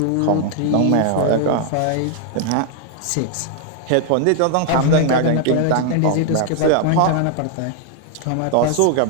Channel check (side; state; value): both; different; correlation 0.00